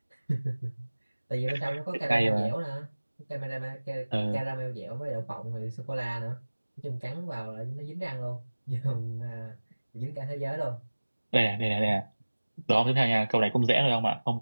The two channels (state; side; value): inverted; both; correlation -1.00